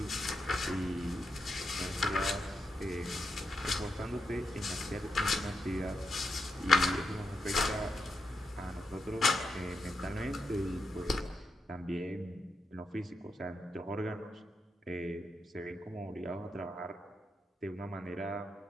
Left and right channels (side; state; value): both; normal; correlation 0.84